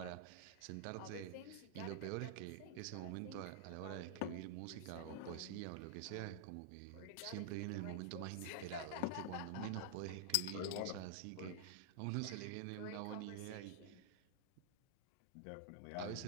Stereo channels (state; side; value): different; both; correlation -0.01